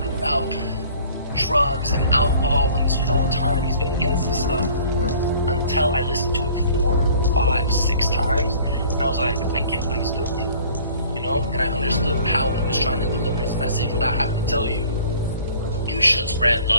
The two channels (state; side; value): inverted; both; correlation -0.51